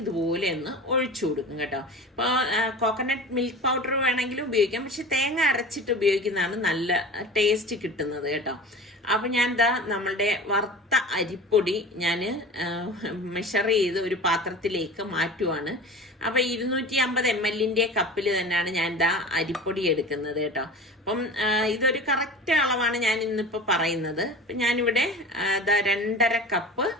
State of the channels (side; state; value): both; normal; correlation 0.36